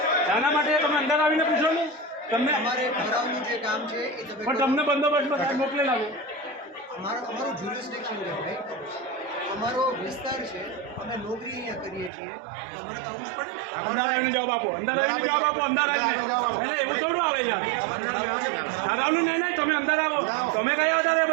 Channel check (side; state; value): left; drops out; at 12.1 s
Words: શાના માટે તમે અંદર આવીને પૂછો ને તમને અમારે ઠરાવનું જે કામ છે એ પણ તમને બંદોબસ્તમાં મોકલેલા આવે અમારું જ્યુરિસ્ડિક્શન છે ભાઈ અમારો વિસ્તાર છે અમે નોકરી અહીંયા કરીએ છીએ અમારે તો આવું જ પડે અંદર આવીને જવાબ આપો અંદર આવીને જવાબ આપો અંદર આવીને એવું થોડું આવે યાર ઠરાવનું નહીં તમે અંદર આવો તમે કયા આધારે